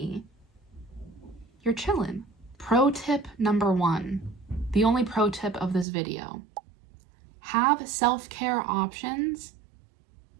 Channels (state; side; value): drops out; left; at 5.9 s